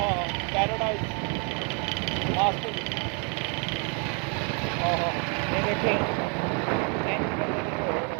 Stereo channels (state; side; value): quieter; left; 36.5 dB